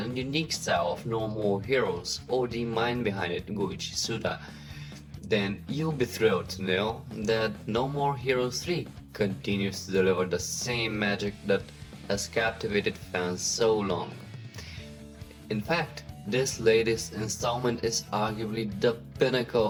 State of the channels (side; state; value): both; identical; correlation 1.00